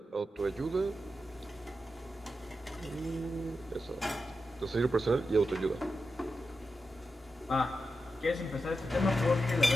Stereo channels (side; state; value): both; normal; correlation 0.89